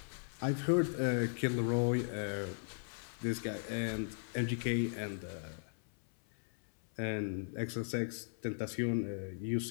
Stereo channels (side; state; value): right; silent; 53 dB below the other